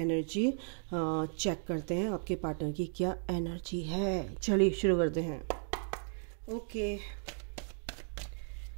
चेक करते हैं, आपके पार्टनर की क्या एनर्जी है। चलिए शुरू करते हैं। Okay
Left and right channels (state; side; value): silent; left; 54 dB below the other